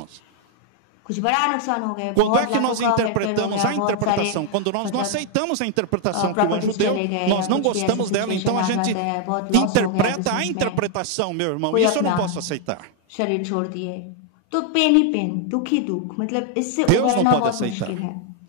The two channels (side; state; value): both; different; correlation 0.00